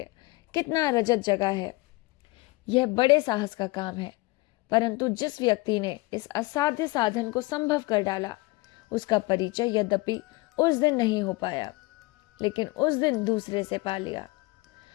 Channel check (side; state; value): right; quieter; 22.8 dB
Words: कितना रजत जगा है। यह बड़े साहस का काम है, परंतु जिस व्यक्ति ने इस असाध्य साधन को संभव कर डाला, उसका परिचय यद्यपि उस दिन नहीं हो पाया, लेकिन उस दिन दूसरे से पा लिया।